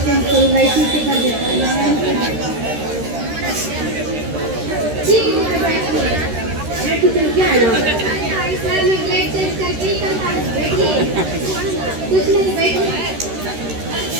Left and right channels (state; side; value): late; left; 13 ms